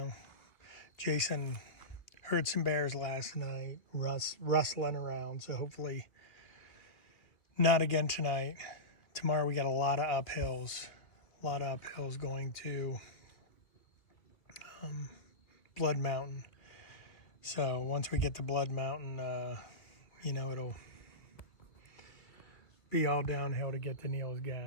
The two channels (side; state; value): right; late; 2.4 ms